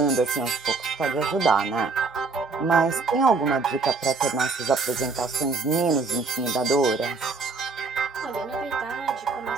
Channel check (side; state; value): left; quieter; 4.1 dB